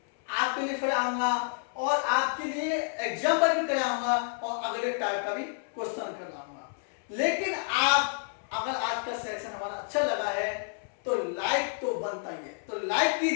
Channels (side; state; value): right; silent; 58 dB below the other